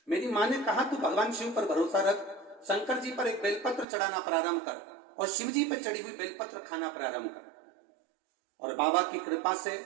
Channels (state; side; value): drops out; left; at 3.9 s